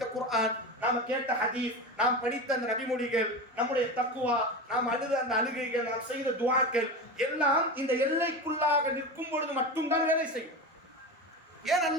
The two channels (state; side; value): normal; both; correlation 0.24